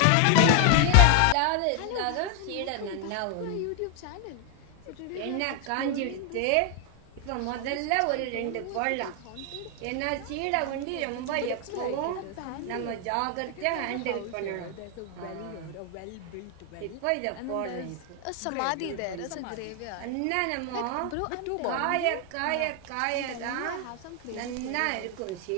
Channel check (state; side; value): different; both; correlation 0.00